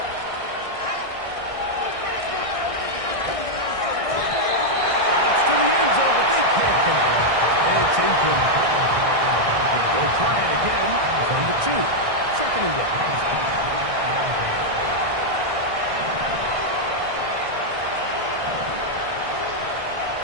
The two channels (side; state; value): left; late; 1.6 ms